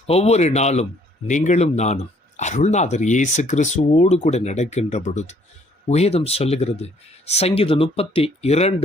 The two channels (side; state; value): both; normal; correlation 0.63